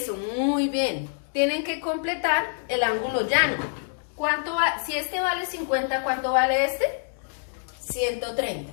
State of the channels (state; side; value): silent; right; digital silence